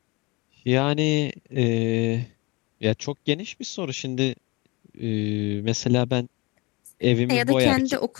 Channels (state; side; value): quieter; right; 25.6 dB